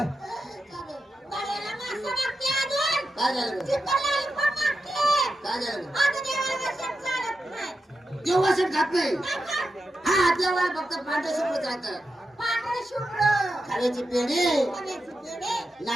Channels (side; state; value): both; normal; correlation 0.88